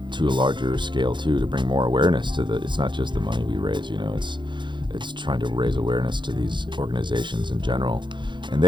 to a larger scale too, to bring more awareness to it's not just the money we raise, it's trying to raise awareness to these organizations in general. And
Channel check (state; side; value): late; left; 0.23 ms